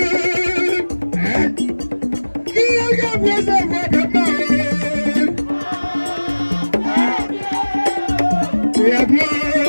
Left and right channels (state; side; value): inverted; both; correlation -1.00